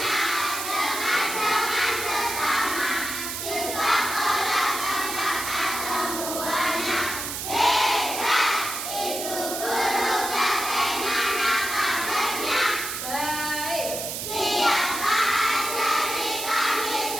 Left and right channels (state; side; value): noise; right; hiss, 5 dB below the sound